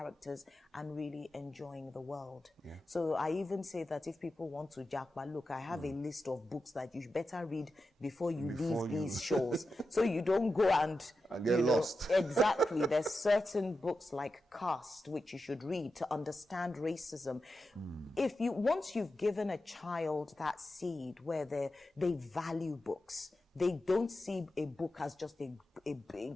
and really enjoying the world. So I even say that if people want to jackpot, look, I have a list of books that you better read before you leave these shows. So you don't go and get lost. Exactly. There's certain books like Caste, which you should read to understand racism. Once you've given a child that seed where they value books, they don't see a book as just a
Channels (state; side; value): normal; both; correlation 0.91